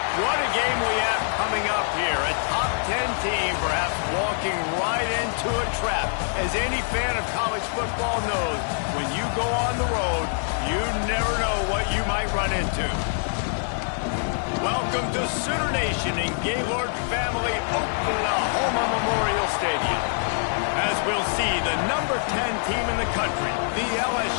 What a game we have coming up here. A top 10 team perhaps walking right into a trap. As any fan of college football knows, when you go on the road, you never know what you might run into. Welcome to Sooner Nation in Gaylord Family Oklahoma Memorial Stadium. As we'll see the number 10 team in the country, the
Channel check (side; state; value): right; silent; 62 dB below the other